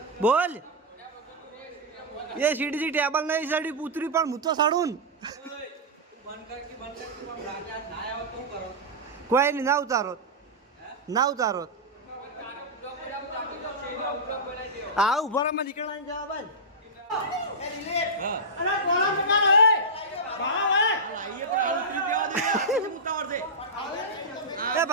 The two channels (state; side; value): normal; both; correlation -0.10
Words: બોલ એ સીડી ટેબલ નહીં સડી પૂતરી પણ હું તો સડું કોઈ નહીં ના ઉતારો ના ઉતારો હા ઉભા માં નીકળવાની જવા ભાઈ એ